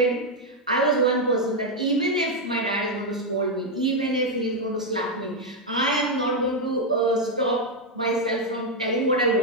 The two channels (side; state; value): both; normal; correlation 0.02